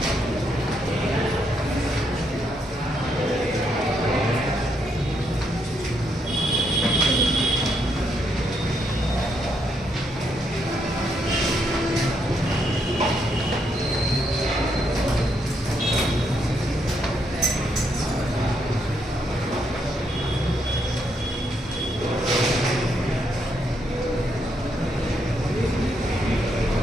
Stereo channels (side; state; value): both; normal; correlation 0.76